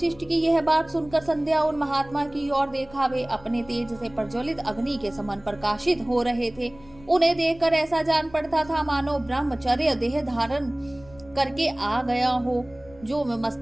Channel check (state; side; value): noise; left; rumble, 22 dB below the sound